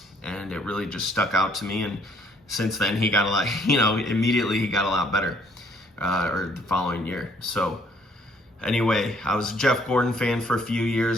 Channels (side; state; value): both; normal; correlation 0.64